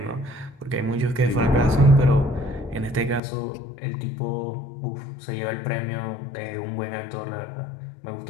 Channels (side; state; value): right; drops out; at 3.2 s